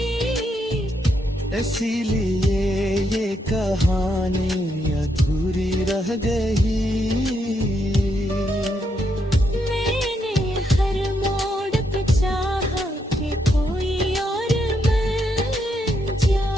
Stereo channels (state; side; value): normal; both; correlation 0.78